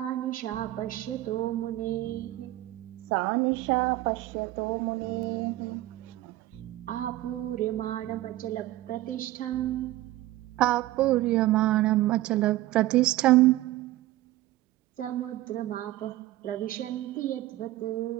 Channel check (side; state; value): left; quieter; 16.2 dB